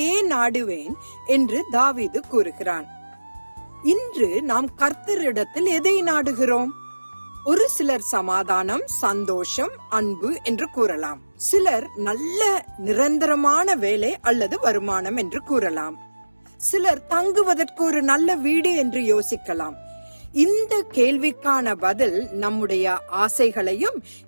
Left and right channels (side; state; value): both; inverted; correlation -1.00